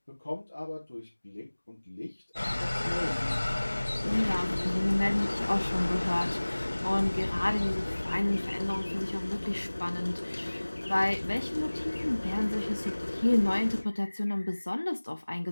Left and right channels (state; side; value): inverted; both; correlation -1.00